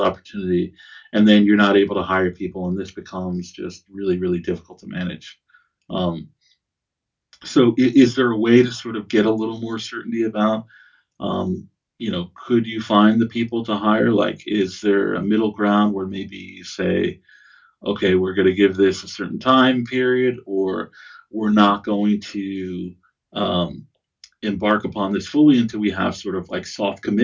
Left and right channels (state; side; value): identical; both; correlation 1.00